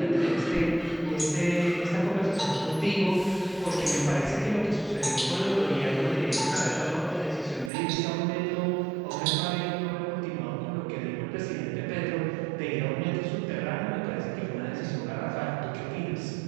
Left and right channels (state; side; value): drops out; left; at 7.7 s